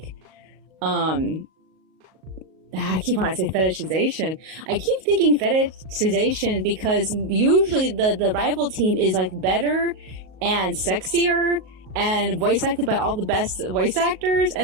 I keep wanting to say fetishization. I keep thinking fetishization because usually the rival team is like better and sexier and voice acted by all the best voice actors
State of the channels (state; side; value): late; left; 38 ms